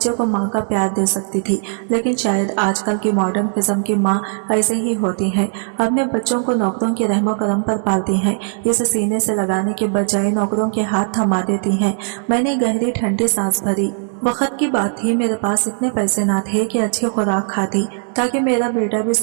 को माँ का प्यार दे सकती थी। लेकिन शायद आजकल की मॉडर्न किस्म की माँ ऐसे ही होती है, अपने बच्चों को नौकरों के रहमो करम पर पालती हैं, इसे सीने से लगाने के बजाय नौकरों के हाथ थमा देती हैं। मैंने गहरी ठंडी सांस भरी। वक्त की बात थी, मेरे पास इतने पैसे ना थे कि अच्छी खुराक खाती ताकि मेरा बेटा भी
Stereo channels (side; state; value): left; silent; digital silence